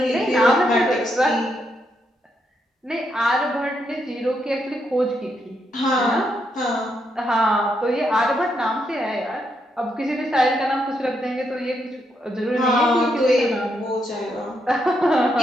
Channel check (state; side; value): normal; both; correlation 0.79